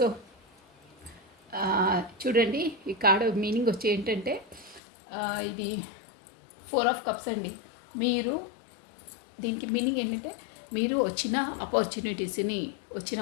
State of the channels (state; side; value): drops out; right; at 4.8 s